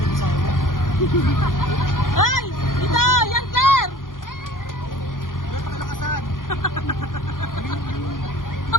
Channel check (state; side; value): late; right; 0.90 ms